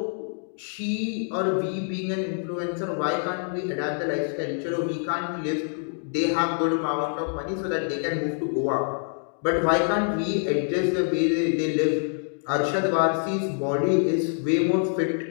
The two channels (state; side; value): silent; right; 61 dB below the other